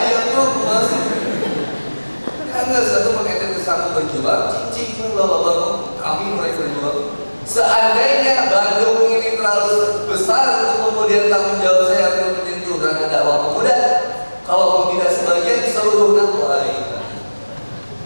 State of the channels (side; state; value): both; inverted; correlation -1.00